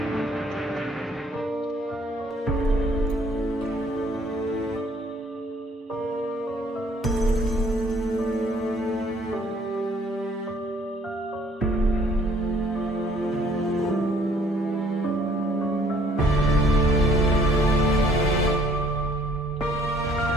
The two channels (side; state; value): both; normal; correlation 0.60